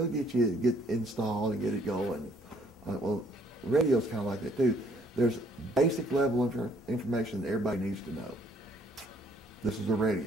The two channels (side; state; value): both; normal; correlation 0.64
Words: get you get installed and get it going. Well, radio's kind of like that too. There's basic level information that everybody needs to know. This is a